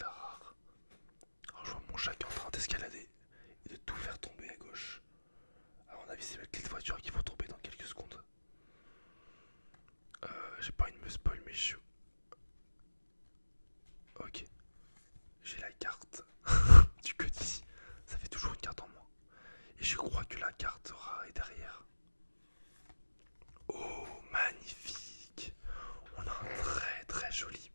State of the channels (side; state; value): both; inverted; correlation -1.00